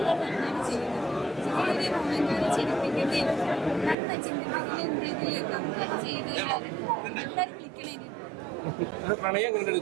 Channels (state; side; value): drops out; left; at 4.0 s